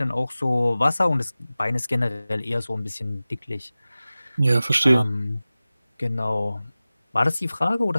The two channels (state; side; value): inverted; both; correlation -0.97